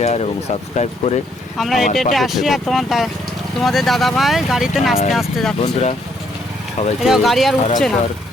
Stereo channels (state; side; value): normal; both; correlation 0.70